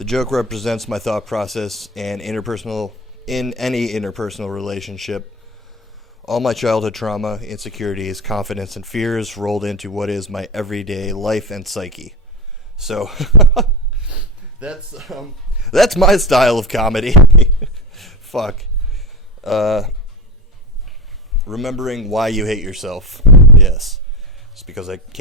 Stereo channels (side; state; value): both; normal; correlation 0.21